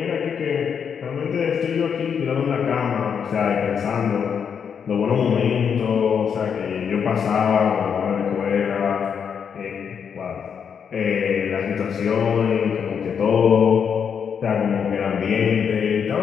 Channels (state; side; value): quieter; right; 7.1 dB